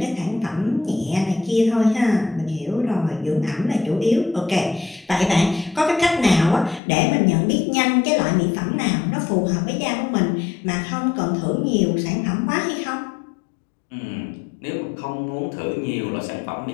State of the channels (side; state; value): right; drops out; at 6.8 s